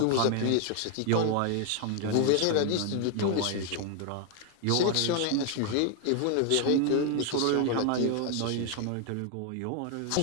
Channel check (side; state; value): both; different; correlation 0.00